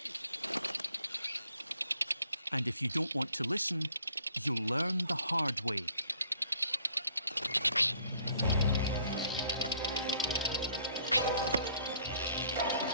And if you don't want to listen, you'll learn the hard way.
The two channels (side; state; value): both; inverted; correlation -0.62